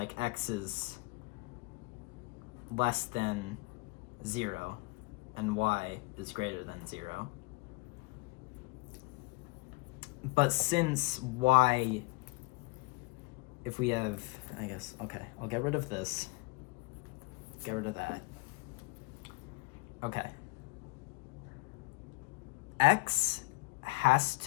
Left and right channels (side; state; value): right; quieter; 26.5 dB